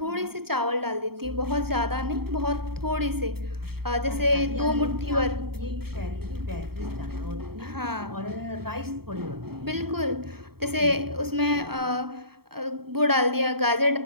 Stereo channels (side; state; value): left; late; 0.95 ms